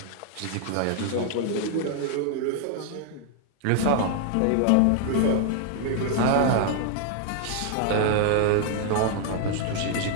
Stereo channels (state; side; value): different; both; correlation 0.00